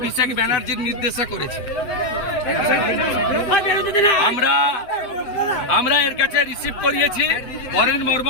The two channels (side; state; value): right; late; 8.1 ms